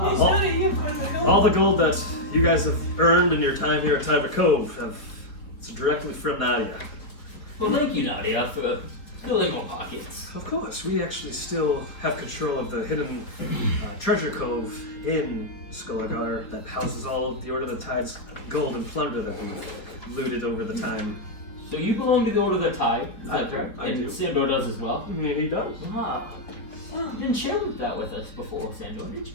yes, all- Nadia, you have quite a bit of gold. all the gold that you guys have earned in your time here at Tiber Cove it's directly from Nadia. Well, thank you, Nadia, for filling our pockets. Of course, we actually still have control of the hidden treasure cove in Skulagar that houses all of the Order of the Tide's gold and plunder that we've looted over the time. So you belong to the Order of the Tide, is I that do, correct? I And do. Sandor does as well. I mean, he does. Ah. Oh, you didn't share that with us before, Sandor, did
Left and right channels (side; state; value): right; late; 4.5 ms